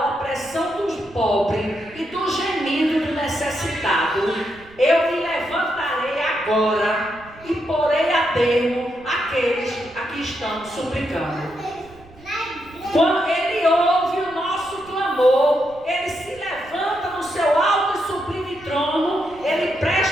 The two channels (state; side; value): noise; right; rumble, 24 dB below the sound